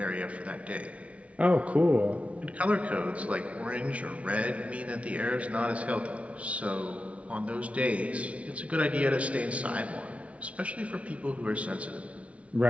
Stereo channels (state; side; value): late; left; 0.064 ms